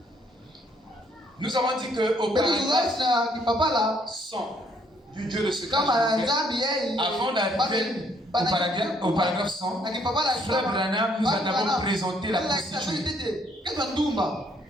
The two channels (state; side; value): normal; both; correlation 0.67